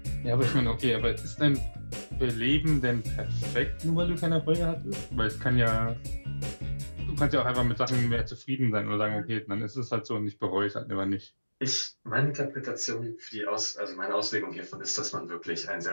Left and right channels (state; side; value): inverted; both; correlation -1.00